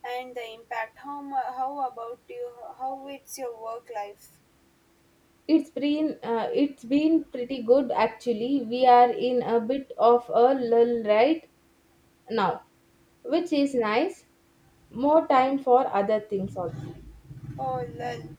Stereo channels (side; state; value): both; identical; correlation 1.00